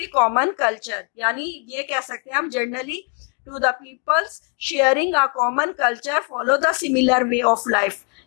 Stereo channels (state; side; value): quieter; right; 36.0 dB